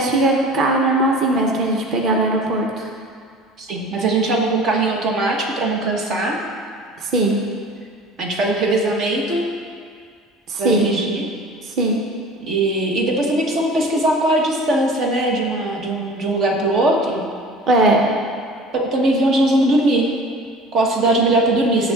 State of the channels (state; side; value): normal; both; correlation 0.42